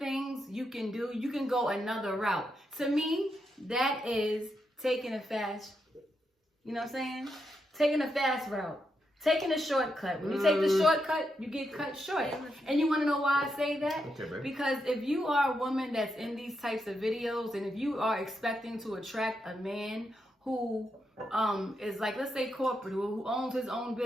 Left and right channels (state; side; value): normal; both; correlation 0.83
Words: you can do. You can go another route. To me, that is taking a fast, you know what I'm saying? Taking a fast route. Taking a shortcut. When you take the shortcut, you get cut short. And you want to know why I say that? Okay, babe. Because if you are a woman that's in these types of videos, and if you are expecting to attract a man who is like, let's say corporate, who owns his own